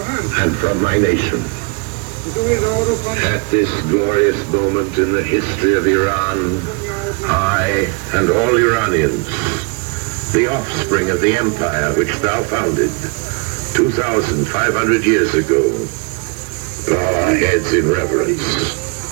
and from my nation. At this glorious moment in the history of Iran, I and all Iranians, the offspring of the empire which thou founded 2,500 years ago, bow our heads in reverence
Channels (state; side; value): quieter; left; 31.8 dB